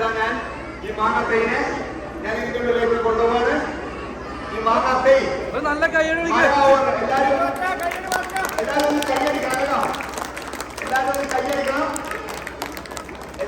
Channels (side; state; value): both; identical; correlation 1.00